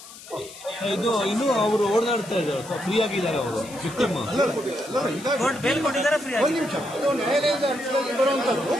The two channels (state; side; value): noise; left; hiss, 17 dB below the sound